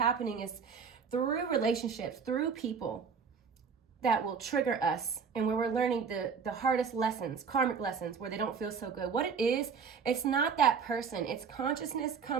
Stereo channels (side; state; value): left; quieter; 6.0 dB